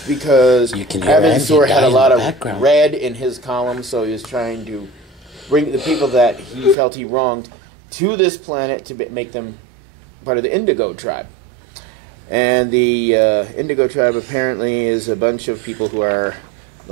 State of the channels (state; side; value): drops out; left; at 6.8 s